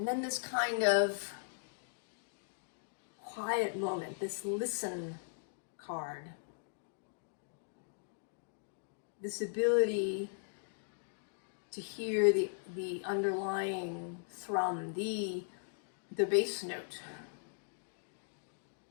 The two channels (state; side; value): silent; right; digital silence